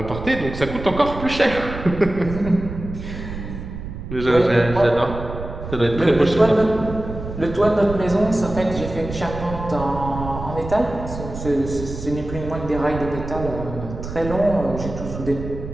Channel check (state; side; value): noise; right; rumble, 9 dB below the sound